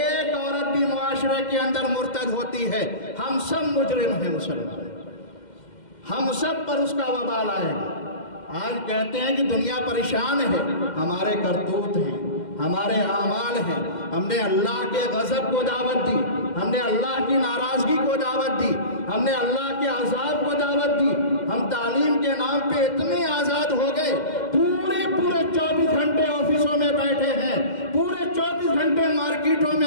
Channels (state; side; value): late; right; 2.1 ms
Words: عورت بھی معاشرے کے اندر مرتد ہوتی ہے، ہم سب مجرم ہیں مسلمان، ہم سب پر اس کا وبال آئے گا۔ آج کہتے ہیں کہ دنیا پریشان ہے، ہمارے کرتوت ہیں، ہمارے اعمال ہیں۔ ہم نے اللہ کے غضب کو دعوت دی، ہم نے اللہ کی ناراضگی کو دعوت دی، ہم نے اللہ کے عذاب کو دعوت دی۔ ہم تعلیم کے نام پہ اتنے آزاد ہو گئے، پورے 24 گھنٹے آفسوں میں بیٹھے ہیں، پورے 24 گھنٹے مارکیٹوں